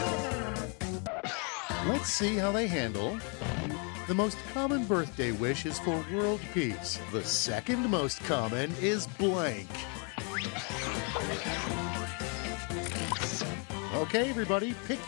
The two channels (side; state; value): right; quieter; 36.5 dB